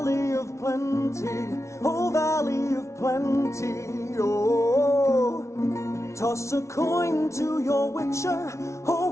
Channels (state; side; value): late; right; 0.14 ms